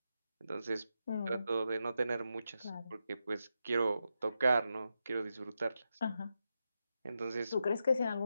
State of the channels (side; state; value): both; inverted; correlation -0.87